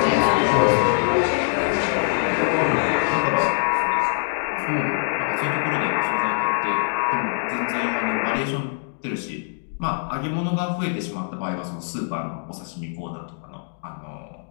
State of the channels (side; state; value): right; silent; digital silence